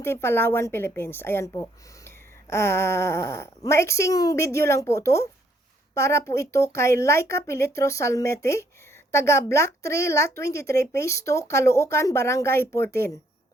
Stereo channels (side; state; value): both; normal; correlation 0.69